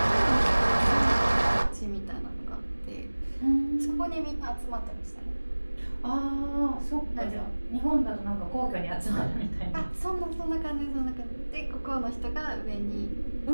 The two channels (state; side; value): inverted; both; correlation -1.00